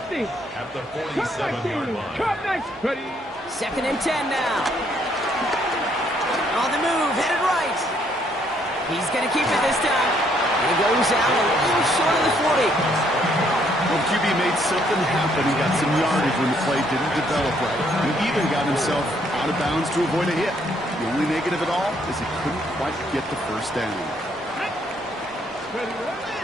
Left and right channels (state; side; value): normal; both; correlation 0.69